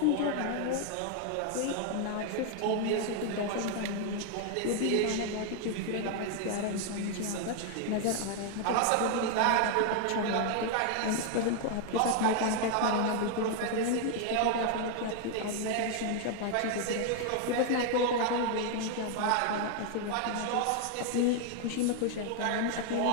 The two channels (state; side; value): different; both; correlation 0.00